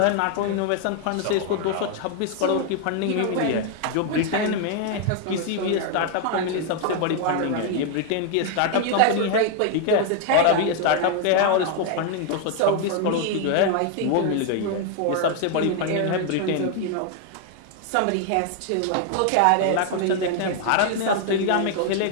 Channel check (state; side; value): different; both; correlation 0.00